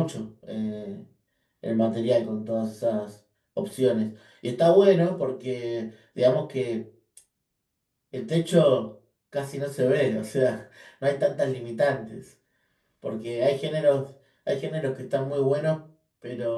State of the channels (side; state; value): both; identical; correlation 1.00